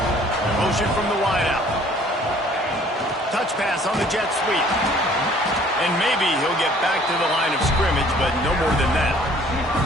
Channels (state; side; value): normal; both; correlation 0.56